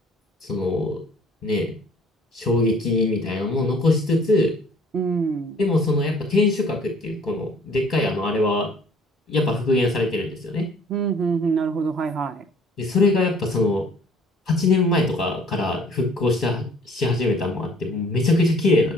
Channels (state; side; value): normal; both; correlation 0.55